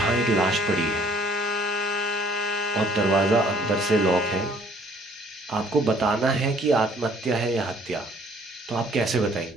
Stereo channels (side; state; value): both; normal; correlation 0.58